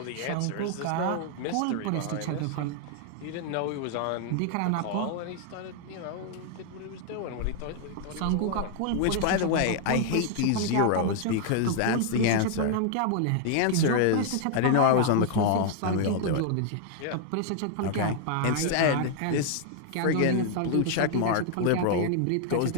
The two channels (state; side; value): different; both; correlation 0.00